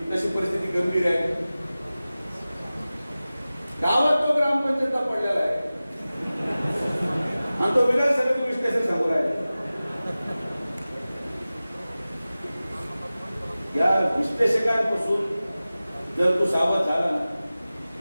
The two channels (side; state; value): both; inverted; correlation -0.97